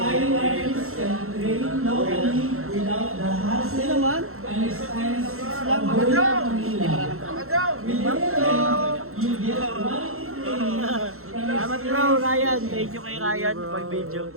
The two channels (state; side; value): late; left; 0.62 ms